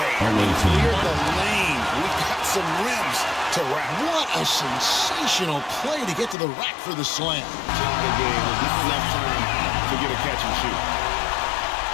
Clear the lane. We've got some rims to wrap. What a sensational play to get to the rack for the slam. The game is just enough time to get a catch and shoot.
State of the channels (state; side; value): drops out; right; at 6.4 s